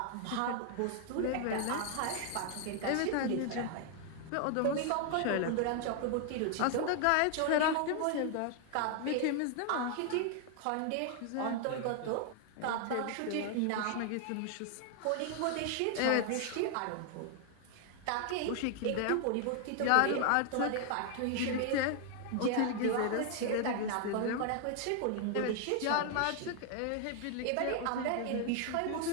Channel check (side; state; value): both; different; correlation 0.00